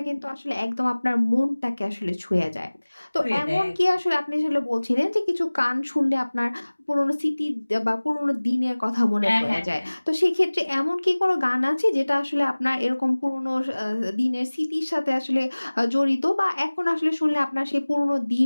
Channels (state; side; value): inverted; both; correlation -1.00